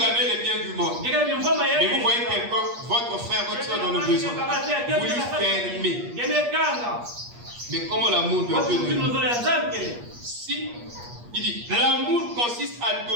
avez les biens du monde. Mais vous voyez quelqu'un, votre frère, votre soeur dans le besoin, vous lui fermez. Mais comment l'amour de Dieu demeure? Si il dit, l'amour consiste à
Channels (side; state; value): left; late; 8.4 ms